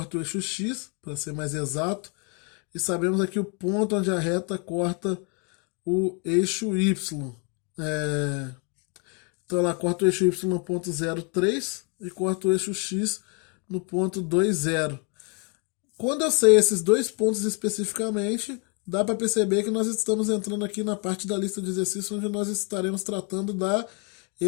o eixo x, para ser mais exato, e sabemos aqui o ponto onde a reta corta o eixo y. É, então ela corta o eixo y no ponto 0,3 e corta o eixo x no ponto 2,0. Quando eu sei esses dois pontos especificamente, dá para perceber que nós estamos entrando aqui na parte da lista de exercícios onde nós estaremos tratando da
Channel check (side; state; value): right; quieter; 35.6 dB